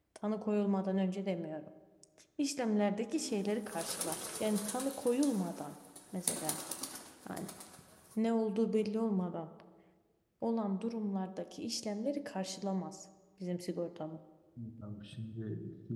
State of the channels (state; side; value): identical; both; correlation 1.00